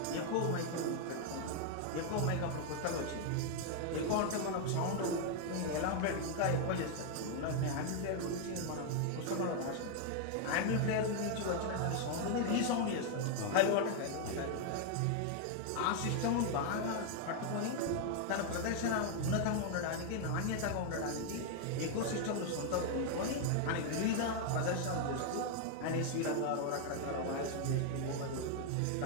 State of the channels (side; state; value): both; different; correlation 0.00